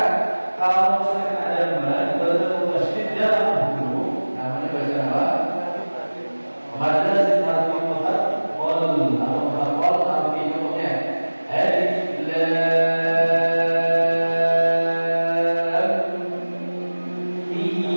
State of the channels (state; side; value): inverted; both; correlation -1.00